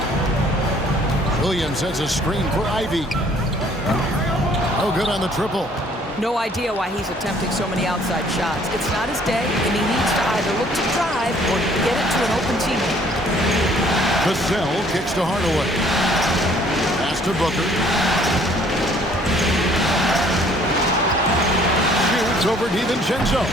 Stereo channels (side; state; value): both; normal; correlation 0.59